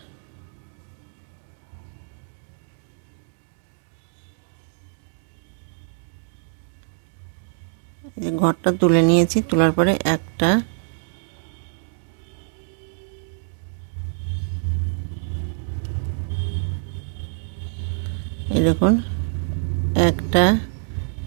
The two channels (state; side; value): silent; left; digital silence